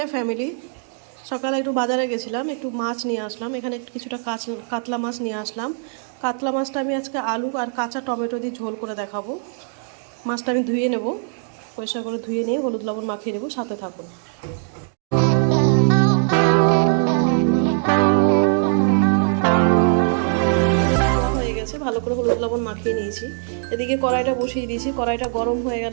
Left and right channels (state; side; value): silent; left; 58 dB below the other